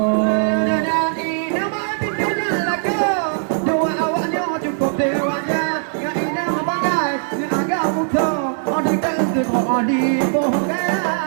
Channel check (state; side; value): silent; left; 66 dB below the other